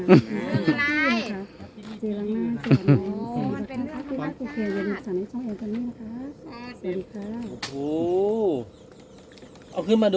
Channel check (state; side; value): identical; both; correlation 1.00